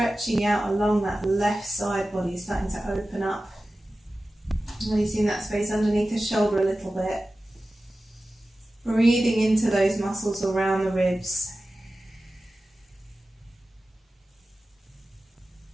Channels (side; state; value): both; normal; correlation 0.95